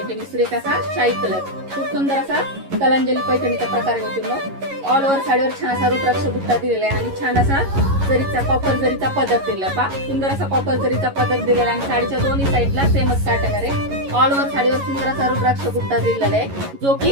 सुरेख असा शाही कलर, खूप सुंदर असा कलांजली पैठणीचा प्रकार आहे मैत्रिणी। ऑल ओव्हर साडीवर छान असा रुद्राक्ष बुट्टा दिलेला आहे आणि छान असा जरीचा कॉपर जरीचा पदर दिलेला पा, सुंदर असा कॉपर जरीचा पदर दिलेला आणि साडीच्या दोन्ही साईडला सेमच पॅटर्न आहे। ऑल ओव्हर साडीवर सुंदर असा रुद्राक्ष बुट्टा दिलेला आहे जो की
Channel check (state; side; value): late; left; 11 ms